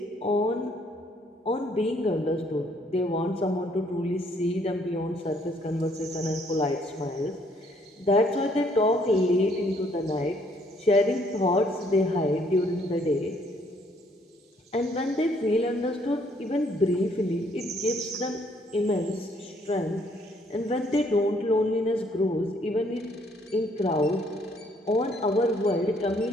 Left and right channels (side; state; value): both; normal; correlation 0.66